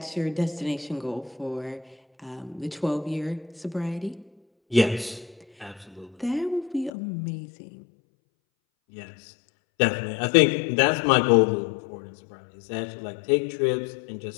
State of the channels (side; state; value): right; drops out; at 6.9 s